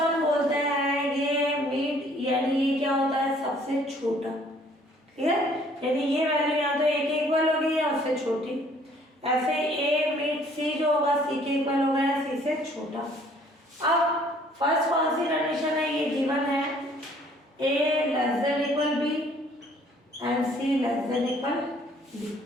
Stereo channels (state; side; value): normal; both; correlation 0.59